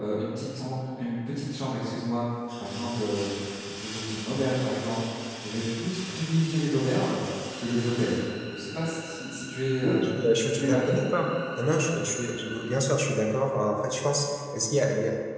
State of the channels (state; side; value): identical; both; correlation 1.00